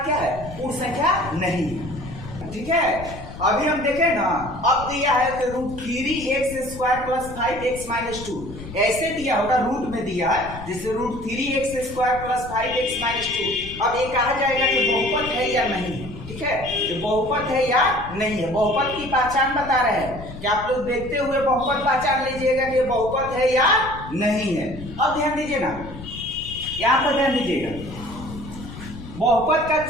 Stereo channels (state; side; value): noise; left; rumble, 13 dB below the sound